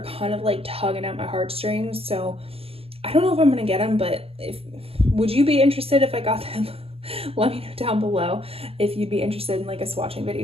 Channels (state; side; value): late; left; 0.28 ms